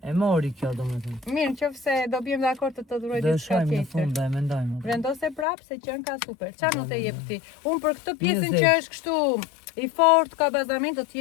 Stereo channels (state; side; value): drops out; right; at 5.5 s